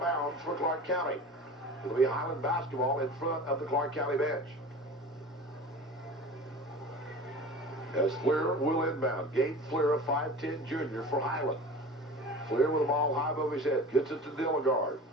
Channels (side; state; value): both; normal; correlation 0.37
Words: bounds for Clark County. It'll be Highland basketball in front of the Clark County bench. As Fleer will inbound. Gabe Fleer, a 5'10 junior for Highland. Fleer with the ball high above his head. Gets it to Dilligard.